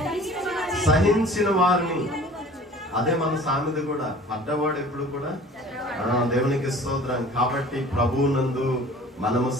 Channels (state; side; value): normal; both; correlation 0.46